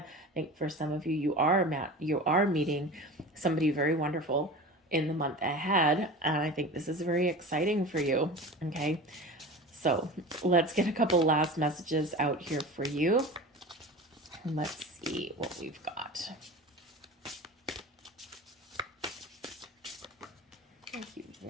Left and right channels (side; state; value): both; normal; correlation 0.33